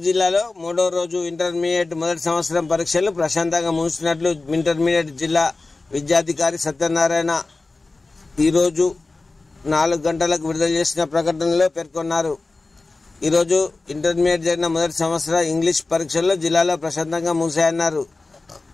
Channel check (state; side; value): quieter; right; 3.5 dB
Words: జిల్లాలో మూడో రోజు ఇంటర్మీడియట్ మొదటి సంవత్సరం పరీక్షలు ప్రశాంతంగా ముగిసినట్లు ఇంటర్మీడియట్ జిల్లా విద్యాధికారి సత్యనారాయణ ఈరోజు 4 గంటలకు విడుదల చేసిన ప్రకటనలో పేర్కొన్నారు. ఈరోజు ఇంటర్మీడియట్ జరిగిన మొదటి సంవత్సర ఇంగ్లీష్ పరీక్షల్లో జిల్లాలో ప్రశాంతంగా ముగిశాయన్నారు.